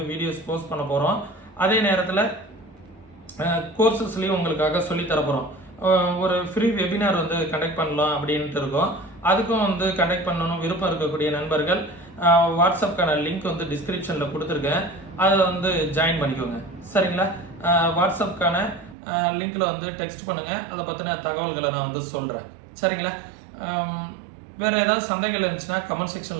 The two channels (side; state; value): left; drops out; at 18.9 s